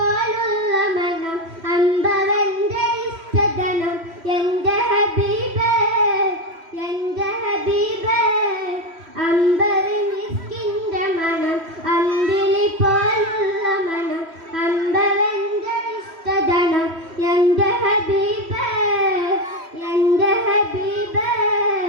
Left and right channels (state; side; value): late; left; 3.1 ms